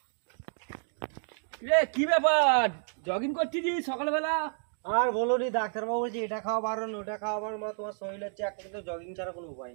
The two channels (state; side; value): silent; left; 57 dB below the other